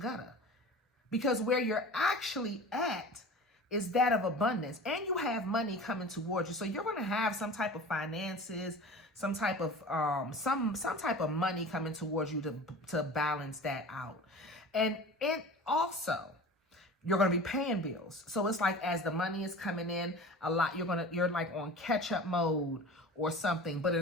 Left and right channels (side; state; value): both; normal; correlation 0.37